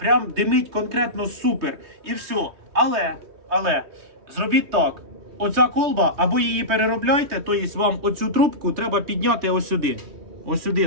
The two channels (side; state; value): left; late; 3.2 ms